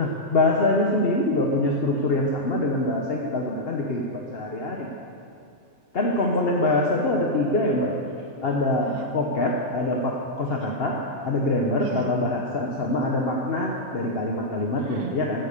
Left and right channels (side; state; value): both; normal; correlation -0.05